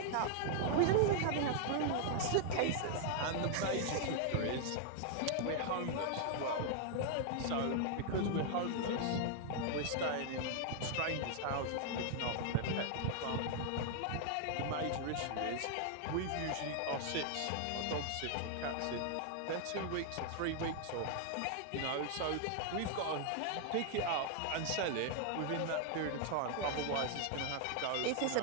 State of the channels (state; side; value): different; both; correlation 0.00